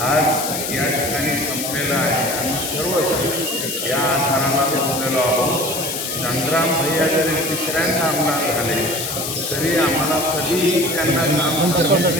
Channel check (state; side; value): noise; left; hiss, 4 dB below the sound